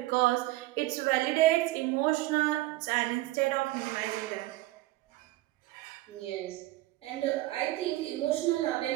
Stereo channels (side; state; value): left; quieter; 17.9 dB